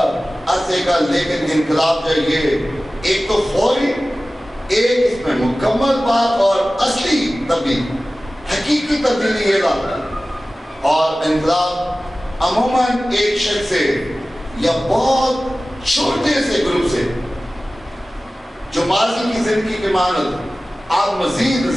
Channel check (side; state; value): both; normal; correlation 0.97